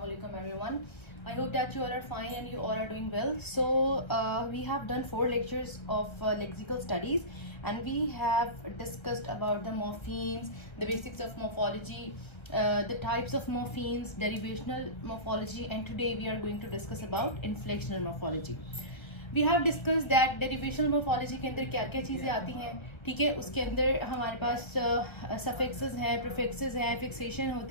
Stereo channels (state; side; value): late; right; 1.5 ms